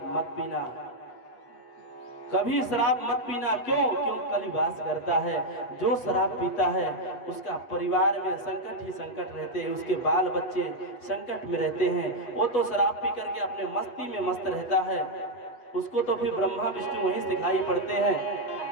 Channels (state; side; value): late; right; 8.0 ms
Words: मत पीना, कभी शराब मत पीना। क्यों? क्यों? कलि वास करता है। जो शराब पीता है उसका परिवार में संकट ही संकट रहते हैं, उसके बाल बच्चे संकट में रहते हैं। वो तो शराब पी करके अपने मस्ती में मस्त रहता है, उसको तो फिर ब्रह्मा विष्णु वहीं दिखाई पड़ते हैं।